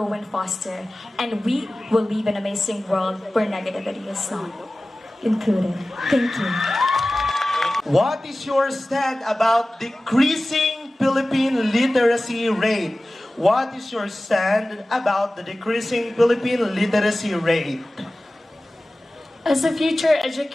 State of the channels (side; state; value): both; normal; correlation 0.97